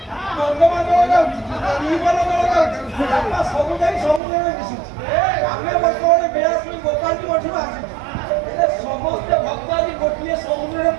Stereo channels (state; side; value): drops out; left; at 4.2 s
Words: ଗଙ୍ଗମା ଜଳ ଯାଉଛି, ଟିଉବଲ ଜଳ ଯାଉଛି, ସବୁ ଯାଇ ସମୁଦ୍ରରେ ମିଶୁଛି। ଆମେ ବର୍ତ୍ତମାନ ବେଳାଶ୍ରୀ ଗୋପାଳୀ ମଠରୁ ଆସିଛୁ, ସମସ୍ତେ ଭକ୍ତ ଆଜି ଗୋଟିଏ ସମୁଦ୍ରରେ